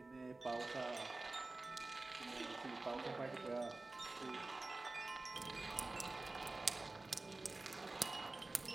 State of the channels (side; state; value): left; quieter; 3.2 dB